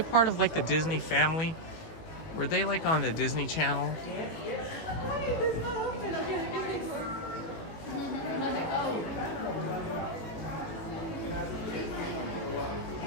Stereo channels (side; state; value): right; late; 18 ms